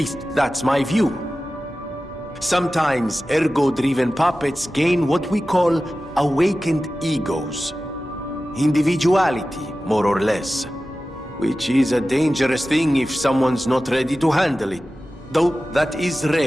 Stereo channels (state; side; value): normal; both; correlation 0.95